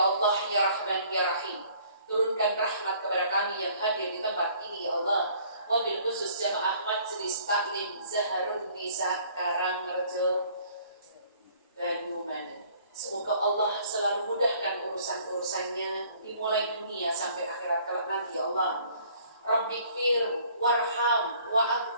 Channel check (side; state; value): both; inverted; correlation -0.57